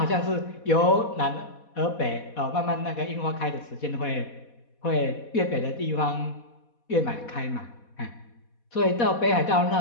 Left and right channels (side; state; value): right; late; 4.1 ms